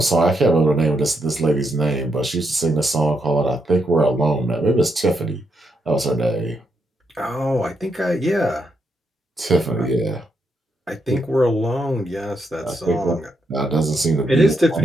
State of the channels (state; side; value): normal; both; correlation 0.80